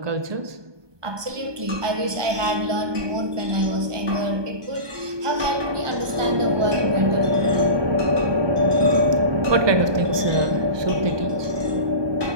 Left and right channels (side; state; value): left; late; 1.2 ms